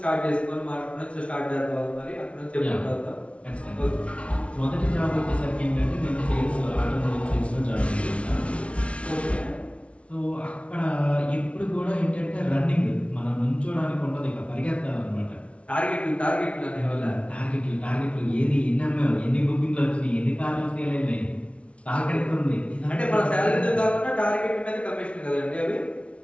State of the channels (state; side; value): late; right; 0.062 ms